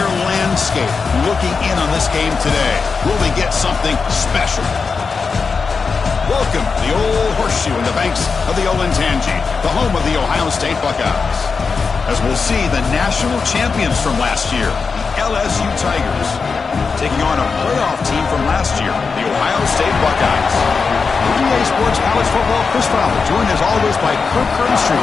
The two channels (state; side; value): quieter; right; 5.0 dB